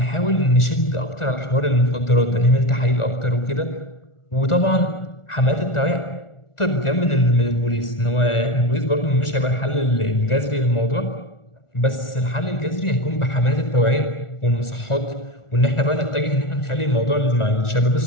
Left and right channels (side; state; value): right; late; 1.4 ms